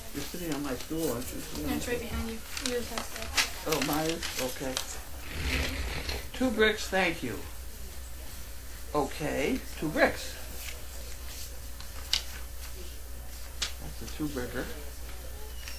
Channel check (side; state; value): both; identical; correlation 1.00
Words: You're sitting on my stool, aren't you? No, it's right behind you. Yours has that. Oh, mine? Okay. 2 bricks, thank you. Okay, 2 bricks. That's a 2-bricker.